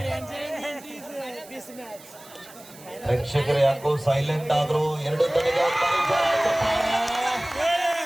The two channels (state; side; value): noise; right; hiss, 21 dB below the sound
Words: ಪ್ರೇಕ್ಷಕರು ಯಾಕೋ ಸೈಲೆಂಟ್ ಆದ್ರು. 2 ತಡೆಗೆ